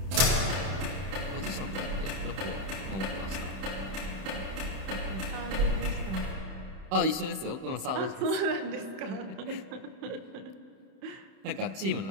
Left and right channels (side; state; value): left; late; 31 ms